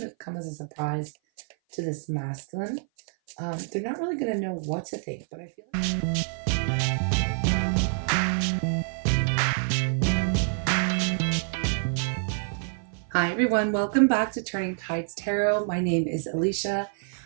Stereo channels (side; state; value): left; silent; 56 dB below the other